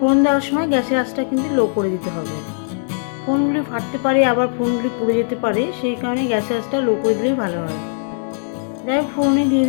দেওয়ার সময় গ্যাসের আঁচটা কিন্তু লো করে দিতে হবে। ফোড়নগুলি ফাটতে পারে, আবার ফোড়নগুলি পুড়ে যেতে পারে, সেই কারণে গ্যাসের আঁচটা লো করে দিলেই ভালো হয়। যাই হোক, ফোড়নে দিয়ে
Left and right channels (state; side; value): silent; right; digital silence